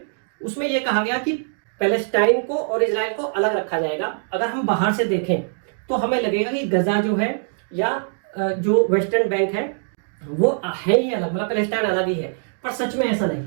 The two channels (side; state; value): left; silent; digital silence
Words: उसमें यह कहा गया कि पैलेस्टाइन को और इजराइल को अलग रखा जाएगा। अगर हम बाहर से देखें तो हमें लगेगा कि गजा जो है या जो वेस्टर्न बैंक है वो है ही अलग, मतलब पैलेस्टाइन अलग ही है, पर सच में ऐसा नहीं